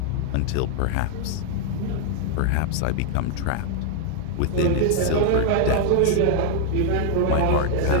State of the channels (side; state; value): both; different; correlation 0.00